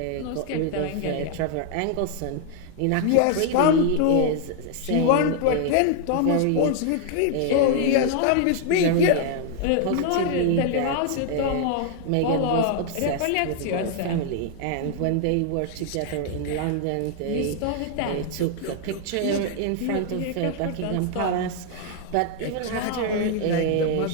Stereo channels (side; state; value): both; different; correlation 0.00